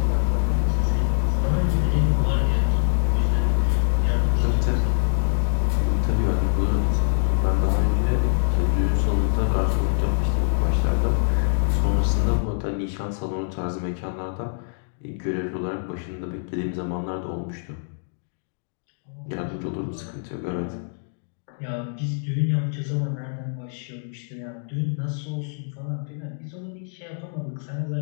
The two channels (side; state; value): right; silent; digital silence